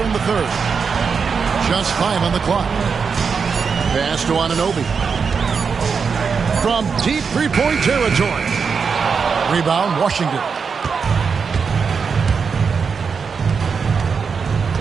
in the third. Just 5 on the clock. Pass to Anunoby. From deep three-point territory. Rebound, Washington.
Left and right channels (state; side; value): quieter; left; 5.7 dB